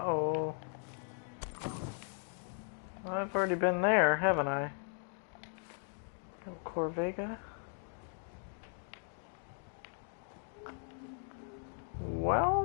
I've already been there, haven't I? Corvega.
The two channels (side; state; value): right; silent; 53 dB below the other